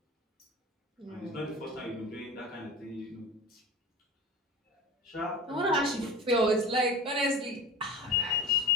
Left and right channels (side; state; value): both; normal; correlation 0.32